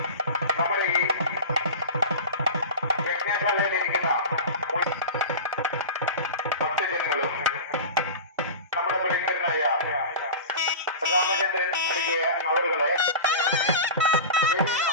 നമ്മുടെ ഈ യജ്ഞശാലയിലിരിക്കുന്ന ഭക്തജനങ്ങളും നമ്മുടെ പ്രിയങ്കരനായ രാമചന്ദ്രൻ നൽകിയ അവരുകളെ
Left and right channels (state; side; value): inverted; both; correlation -0.30